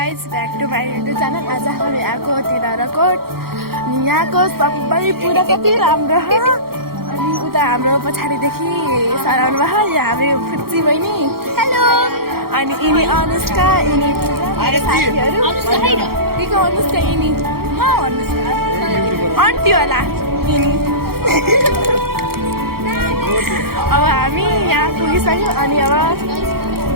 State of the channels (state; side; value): late; left; 0.94 ms